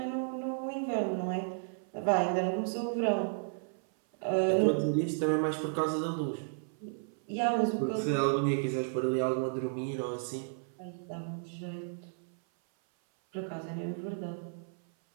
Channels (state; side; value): silent; left; 56 dB below the other